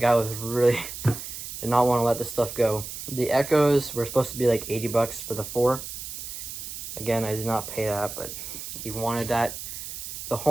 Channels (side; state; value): right; noise; hiss, 9 dB below the sound